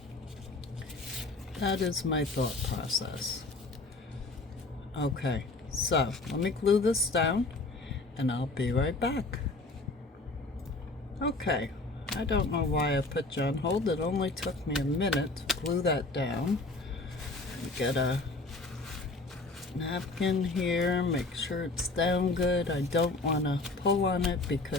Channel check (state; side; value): quieter; right; 3.3 dB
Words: That is my thought process. Okay, so let me glue this down and I'll be right back. Okay, I don't know why I put you on hold. It only took me a minute to glue that down. Get a napkin here, make sure it's down good. I don't want to pull on it